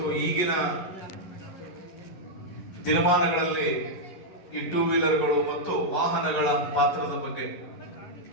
ಈಗಿನ ದಿನಮಾನಗಳಲ್ಲಿ ಈ ಟೂ ವೀಲರ್ಗಳು ಮತ್ತು ವಾಹನಗಳ ಪಾತ್ರದ ಬಗ್ಗೆ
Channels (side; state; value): right; late; 11 ms